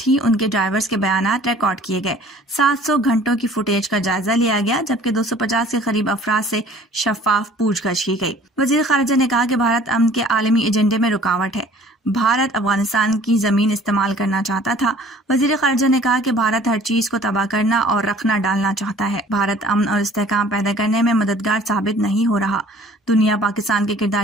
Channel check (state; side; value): normal; both; correlation 0.51